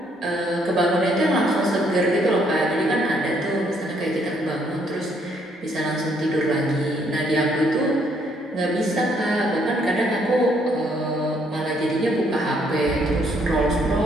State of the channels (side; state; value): both; normal; correlation 0.69